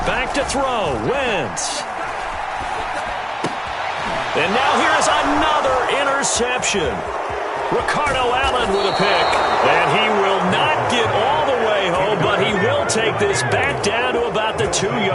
Back to throw, Wentz. And now here's another interception. Ricardo Allen with a pick. And he will not get all the way take this back down to about the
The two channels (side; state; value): both; identical; correlation 1.00